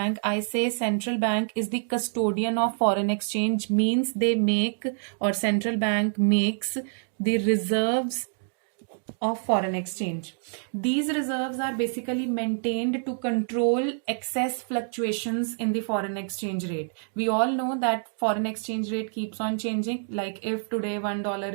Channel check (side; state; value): left; silent; digital silence